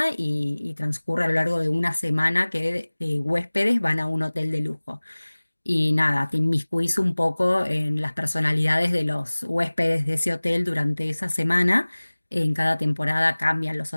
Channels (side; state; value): both; inverted; correlation -1.00